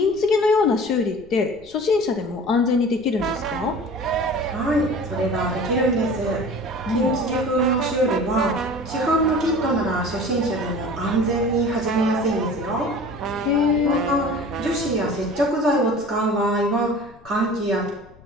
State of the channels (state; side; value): noise; left; rumble, 24 dB below the sound